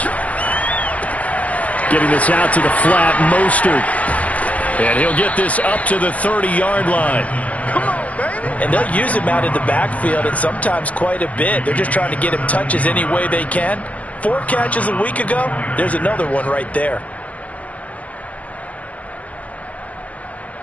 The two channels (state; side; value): late; right; 0.068 ms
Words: Getting this out to the flat, Mostert. And he'll get this up to the 30-yard line. Come on, baby. And they'll use him out in the backfield, and sometimes quite a bit. They're just trying to get him touches any way they can. 4 catches a week ago. There's another one right there.